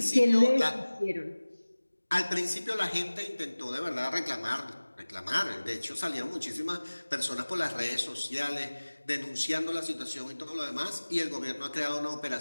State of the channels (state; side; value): inverted; both; correlation -1.00